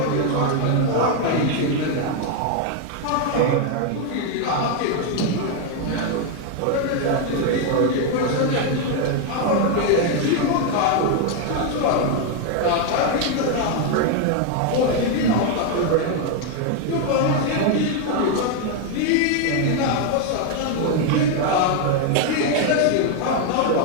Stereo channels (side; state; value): both; different; correlation 0.01